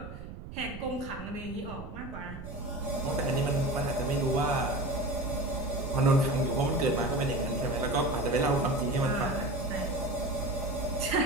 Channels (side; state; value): right; noise; rumble, 11 dB below the sound